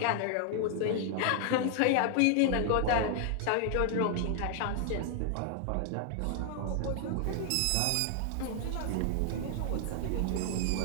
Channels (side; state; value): both; different; correlation 0.00